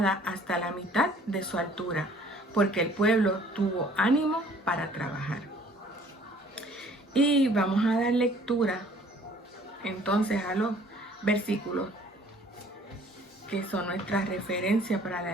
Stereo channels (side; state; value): both; normal; correlation 0.55